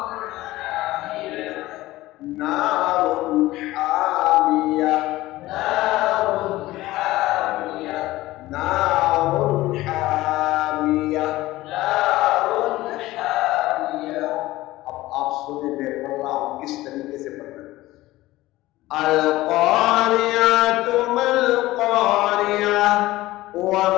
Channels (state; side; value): quieter; right; 17.5 dB